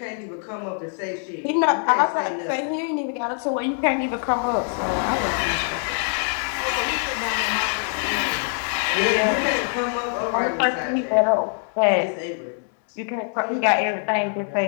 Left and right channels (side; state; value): right; silent; 56 dB below the other